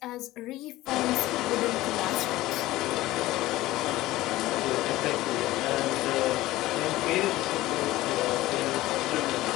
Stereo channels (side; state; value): right; quieter; 17.0 dB